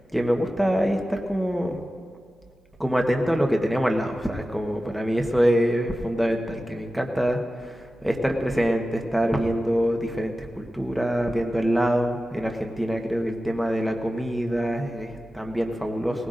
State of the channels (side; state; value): both; normal; correlation 0.94